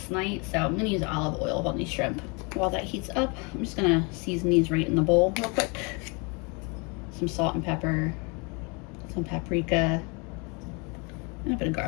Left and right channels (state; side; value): quieter; right; 31.5 dB